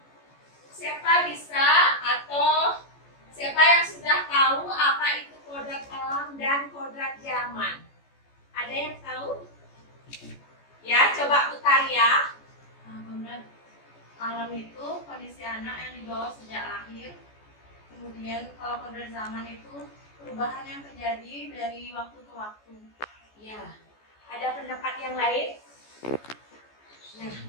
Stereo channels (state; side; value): late; right; 14 ms